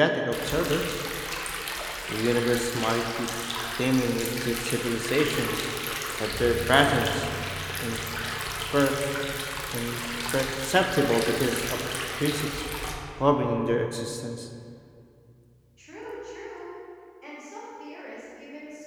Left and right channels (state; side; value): identical; both; correlation 1.00